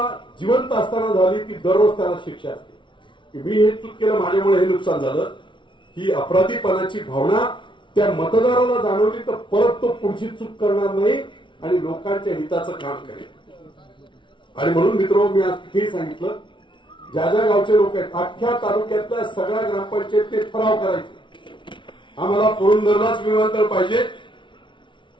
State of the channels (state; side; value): late; right; 0.24 ms